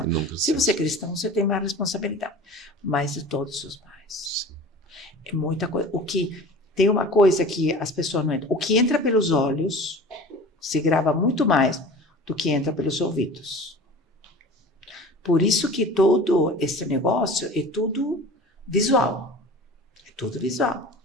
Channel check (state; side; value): normal; both; correlation 0.38